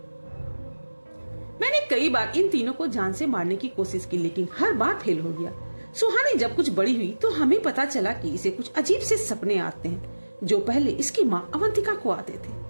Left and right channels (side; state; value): both; inverted; correlation -1.00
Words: मैंने कई बार इन तीनों को जान से मारने की कोशिश की, लेकिन हर बार फेल हो गया। सुहानी जब कुछ बड़ी हुई तो हमें पता चला कि इसे कुछ अजीब से सपने आते हैं, जो पहले इसकी माँ अवंतिका को आते थे।